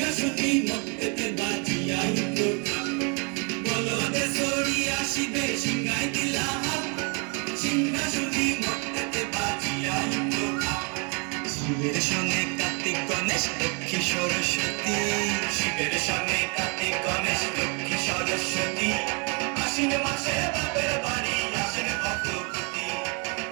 মর্তেতে বাজিয়া উঠল ঢাক। বলদে সরিয়া শিবে সিংহাই দিলা হাত, সিংহাসনী মর্তেতে বাজিয়া উঠল ঢাক। শিবের সঙ্গে কার্তিক গণেশ লক্ষ্মী সরস্বতী, শিবের সঙ্গে কার্তিক গণেশ লক্ষ্মী সরস্বতী। আশ্বিন মাসে বাপের বাড়ি আসেন ভগবতী,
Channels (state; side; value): quieter; left; 35.1 dB